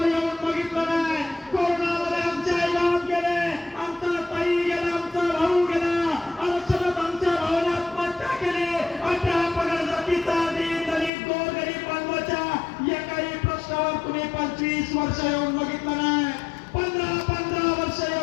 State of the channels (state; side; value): drops out; right; at 11.1 s